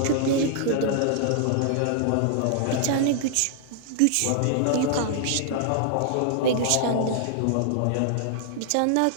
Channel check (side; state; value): both; different; correlation -0.01